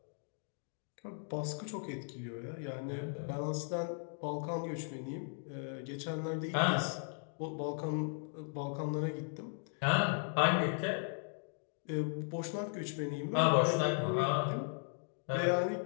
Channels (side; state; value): right; silent; 53 dB below the other